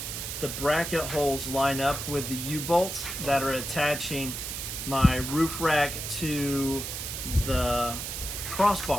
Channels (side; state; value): right; noise; hiss, 6 dB below the sound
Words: the bracket holes line up with the U-bolts that are attaching my roof rack to the